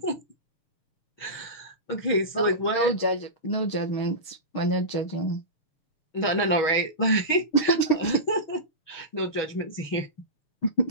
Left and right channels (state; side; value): late; right; 6.2 ms